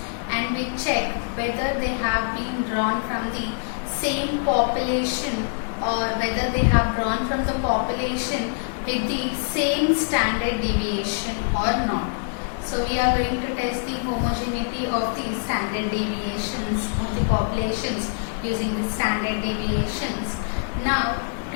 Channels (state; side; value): silent; right; digital silence